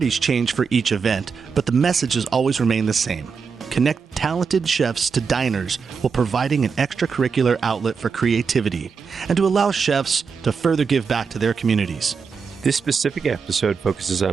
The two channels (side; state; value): left; quieter; 5.6 dB